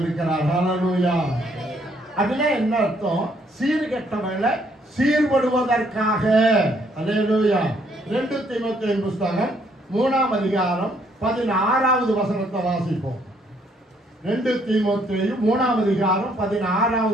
ஹல்லேலூயா. அப்படின்னா என்ன அர்த்தம்? சீர்கெட்டவர்களை சீர்படுவதற்காக. ஹல்லேலூயா. 2 தீமோத்தேயு புத்தகம் 3ஆம் அதிகாரம் 16வது வசனத்தை வாசிப்போம். 2 தீமோத்தேயு 3ஆம் அதிகாரம்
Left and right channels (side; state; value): both; normal; correlation 0.68